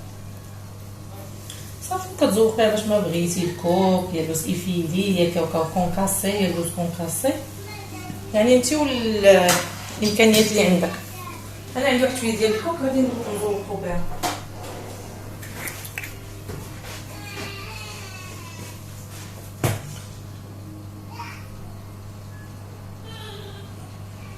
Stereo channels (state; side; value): identical; both; correlation 1.00